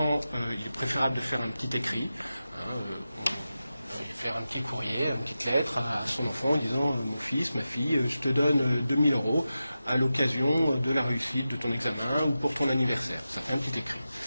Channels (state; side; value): inverted; both; correlation -0.93